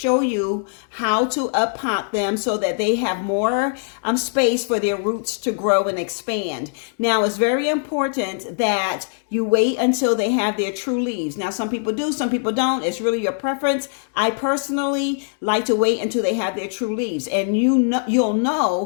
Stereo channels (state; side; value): silent; right; digital silence